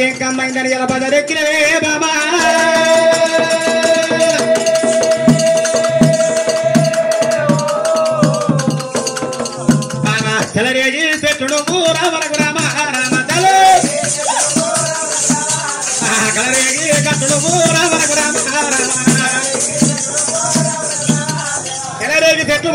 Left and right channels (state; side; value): identical; both; correlation 1.00